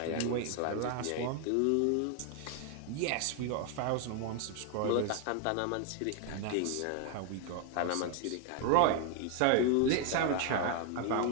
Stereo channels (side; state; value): both; different; correlation 0.01